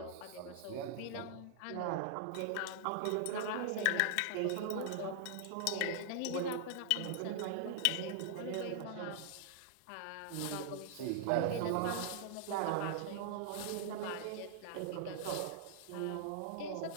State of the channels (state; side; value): different; both; correlation -0.01